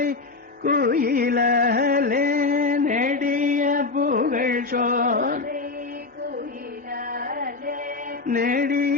குயிலாலே, நெடிய புகழ் சோலை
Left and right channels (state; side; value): quieter; right; 3.9 dB